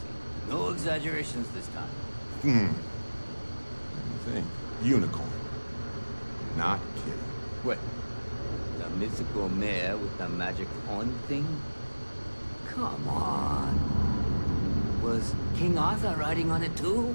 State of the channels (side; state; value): both; inverted; correlation -1.00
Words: No exaggerations this time. Let me think. Unicorn. Not kidding. What? The mythical mare with the magic horn thing? Come on. Was King Arthur riding on it too?